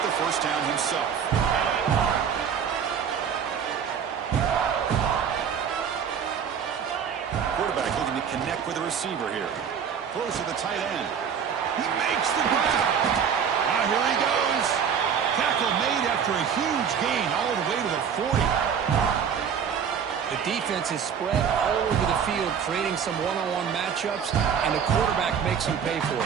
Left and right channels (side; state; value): left; quieter; 7.4 dB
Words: the 1st down himself. Quarterback looking to connect with the receiver here. Close to the tight end. He makes the grab. Now here he goes. Tackle made after a huge gain all the way to the 40. The defense is spread all over the field, creating some one-on-one matchups, and the quarterback makes them pay for